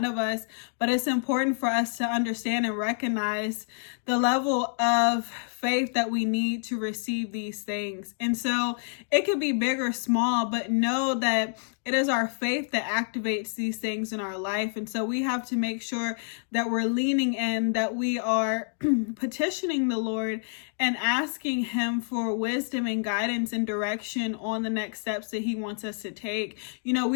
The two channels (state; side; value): silent; right; digital silence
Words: of us, but it's important for us to understand and recognize the level of faith that we need to receive these things. And so it could be big or small, but know that it is our faith that activates these things in our life. And so we have to make sure that we're leaning in, that we are petitioning the Lord and asking Him for wisdom and guidance and direction on the next steps that He wants us to take. We